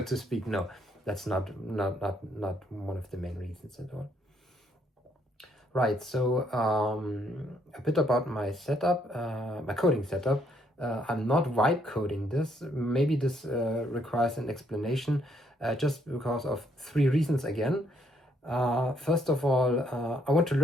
to speak. No, that's not one of the main reasons at all. Right, so a bit about my setup, my coding setup. I'm not vibe coding this. Maybe this requires an explanation, just because of 3 reasons again. First of all, I want to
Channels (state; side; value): normal; both; correlation 0.70